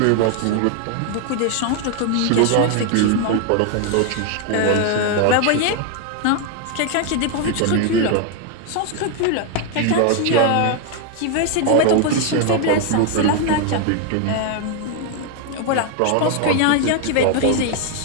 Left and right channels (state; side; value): different; both; correlation 0.01